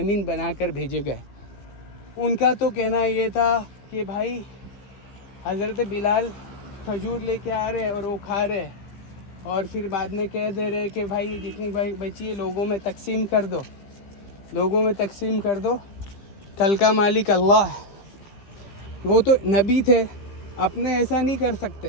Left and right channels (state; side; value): late; right; 15 ms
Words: बनाकर भेजे गए, उनका तो कहना ये था कि भाई हज़रत बिलाल खजूर लेके आ रहे और वो खा रहे और फिर बाद में कह दे रहे कि भाई जितनी भाई बची है लोगों में तकसीम कर दो, लोगों में तकसीम कर दो, कल का मालिक अल्लाह है। वो तो नबी थे, अपने ऐसा नहीं कर